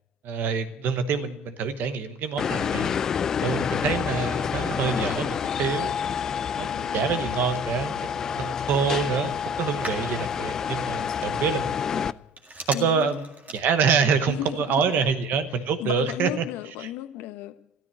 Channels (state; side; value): normal; both; correlation 0.47